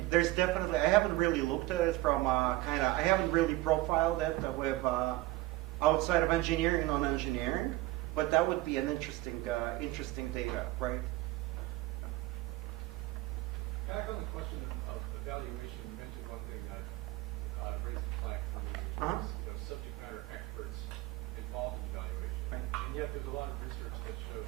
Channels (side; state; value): left; quieter; 18.7 dB